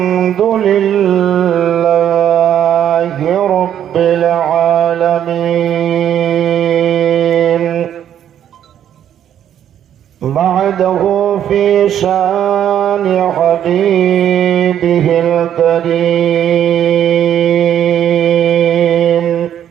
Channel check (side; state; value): left; quieter; 10.1 dB